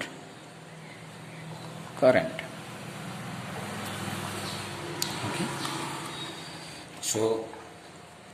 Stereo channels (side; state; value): both; identical; correlation 1.00